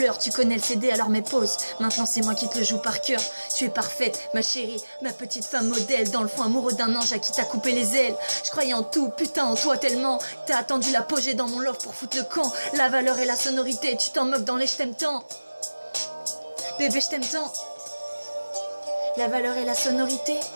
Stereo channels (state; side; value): inverted; both; correlation -1.00